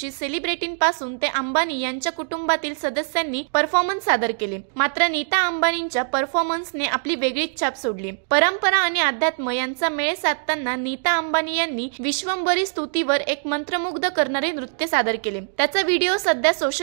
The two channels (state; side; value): silent; left; digital silence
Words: सेलिब्रिटींपासून ते अंबानी यांच्या कुटुंबातील सदस्यांनी परफॉर्मन्स सादर केले। मात्र नीता अंबानींच्या परफॉर्मन्सने आपली वेगळीच छाप सोडली। परंपरा आणि अध्यात्म यांचा मेळ साधताना नीता अंबानी यांनी विश्वंभरी स्तुतीवर एक मंत्रमुग्ध करणारे नृत्य सादर केले। त्याचा व्हिडिओ सध्या